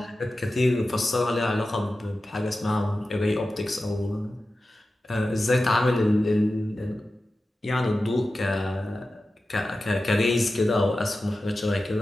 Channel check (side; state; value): both; normal; correlation 0.94